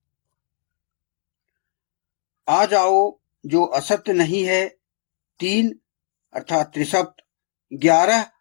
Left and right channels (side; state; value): right; silent; digital silence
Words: आ जाओ जो असत्य नहीं है, 3 अर्थात त्रिसप्त, 11